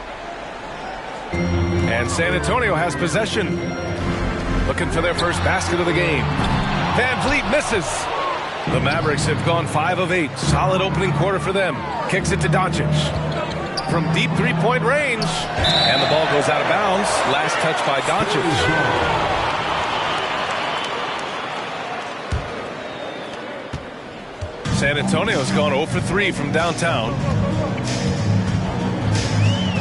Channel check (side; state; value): both; identical; correlation 1.00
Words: And San Antonio has possession. Looking for their first basket of the game. Van Vliet misses. The Mavericks have gone 5 of 8. Solid opening quarter for them. Kicks it to Doncic. From deep three-point range. And the ball goes out of bounds. Last touch by Doncic. San Antonio's gone 0 for 3 from downtown.